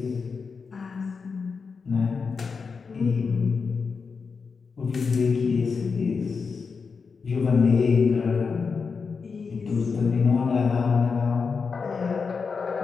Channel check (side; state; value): right; quieter; 5.2 dB